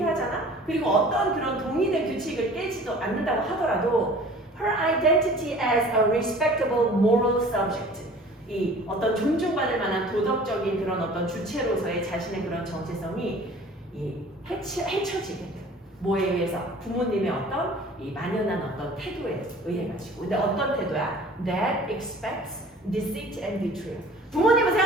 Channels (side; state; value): both; normal; correlation 0.47